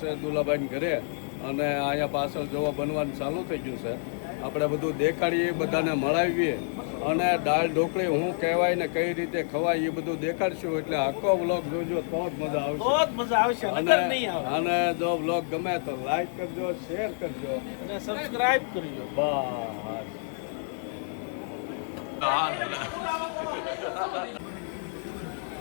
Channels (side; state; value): right; silent; digital silence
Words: છે દુલાભાઈને ઘરે, અને અહીંયા પાછળ જોવા બનવાનું ચાલુ થઈ ગયું છે. આપણે બધું દેખાડીએ, બધાને મળાવીએ અને દાળ ઢોકળી શું કહેવાય ને કઈ રીતે ખવાય એ બધું દેખાડશું. એટલે આખો વ્લોગ જોજો તો જ મજા આવશે. બહુ જ મજા આવશે, નકર નહીં આવે. અને જો વ્લોગ ગમે તો લાઈક કરજો, શેર કરજો અને સબસ્ક્રાઇબ કરજો. બસ હાલ હા